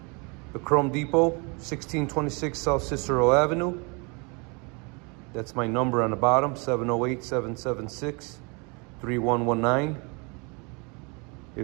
The Chrome Depot, 1626 South Cicero Avenue. That's my number on the bottom, 708-776-3119.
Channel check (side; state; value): left; quieter; 31.1 dB